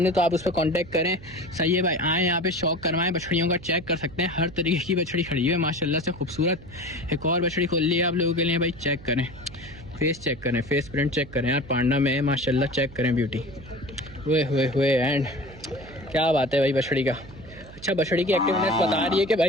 तो आप उस पर कांटेक्ट करें। सही है भाई, आए यहाँ पे शौक करवाएं, बछड़ियों का चेक कर सकते हैं। हर तरीके की बछड़ी खड़ी हुई है माशाल्लाह से खूबसूरत। एक और बछड़ी खोल ली है आप लोगों के लिए भाई, चेक करें, फेस चेक करें, फेस प्रिंट चेक करें यार, पांडा में है माशाल्लाह, चेक करें ब्यूटी। हुए एंड क्या बात है भाई बछड़ी का। अच्छा, बछड़ी की एक्टिवनेस बता रही है कि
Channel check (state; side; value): noise; right; hum, 18 dB below the sound